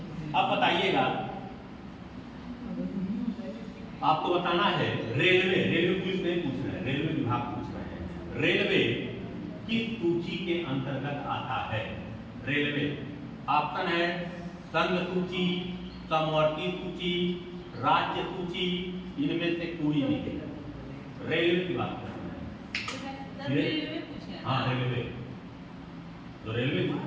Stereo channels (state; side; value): identical; both; correlation 1.00